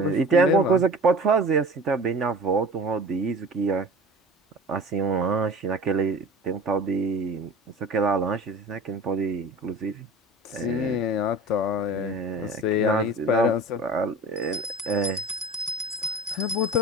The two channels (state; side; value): normal; both; correlation 0.38